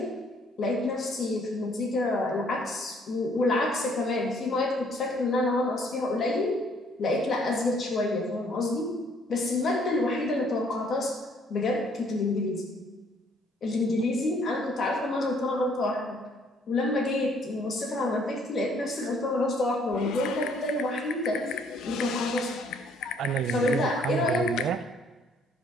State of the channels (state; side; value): normal; both; correlation 0.63